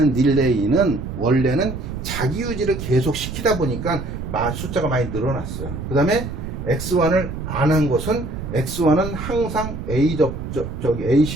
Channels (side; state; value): right; noise; rumble, 7 dB below the sound